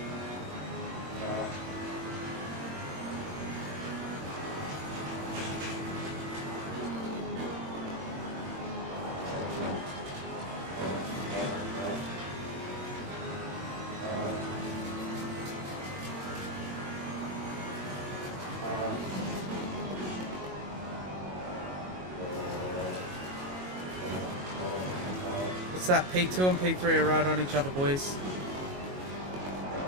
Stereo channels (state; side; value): late; left; 22 ms